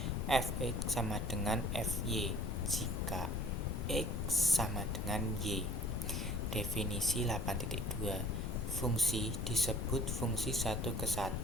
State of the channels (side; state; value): both; normal; correlation 0.51